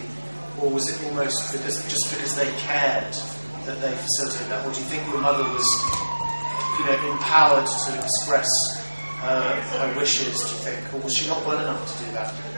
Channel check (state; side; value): inverted; both; correlation -1.00